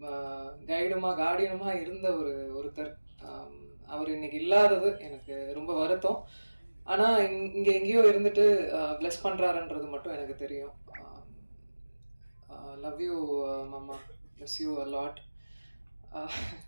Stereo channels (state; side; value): inverted; both; correlation -1.00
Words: கைடுமா கார்டியனுமா இருந்த ஒருத்தர். அவர் இன்னைக்கு இல்லாதது எனக்கு ரொம்ப வருத்தம். ஆனா இங்க எங்கேயோ இருந்துட்டு பிளஸ் பண்றாருன்றது மட்டும் எனக்கு தெரியும். லவ் யூ மாமா, miss you a lot.